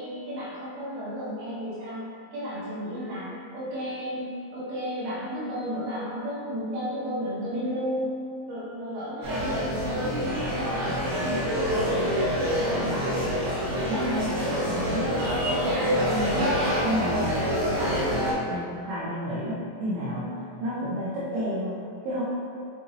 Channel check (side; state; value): left; late; 23 ms